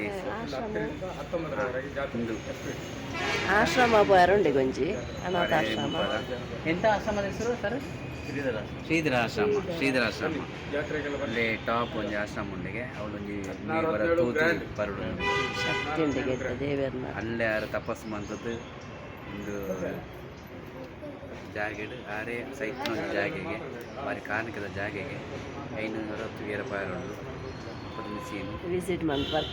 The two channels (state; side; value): identical; both; correlation 1.00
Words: ಆಶ್ರಮ ಬರೋಂಡೆ ಗೊಂಜಿ ಅನಾಥಾಶ್ರಮ. ಎಂಥ ಆಶ್ರಮದ ಹೆಸರು ಸರ್? ಶ್ರೀಧರಾಶ್ರಮ ಅಲ್ಲಿ ಟಾಪ್ ಒಂಜಿ ಆಶ್ರಮ ಉಂಡಿಗೆ ಅವಳೊಂಜಿ ಬರುಡು ಶಕ್ತಿ ಉಂಡಿಗೆ ದೇವರನ್ನ ಅಲ್ಲೇ ಯಾರು ತಪಸ್ಸು ಮಂತದ್ದು ಒಂದು ಜಾಗೆಡು ಆರೇ ಸೈತ್ನ ಒಂದು ಜಾಗೆಗೆ ಬಾರಿ ಕಾರಣಕದ ಜಾಗೆಗೆ 560 ರೂಪಾಯಿ ವಿಸಿಟ್ ಮಂತ್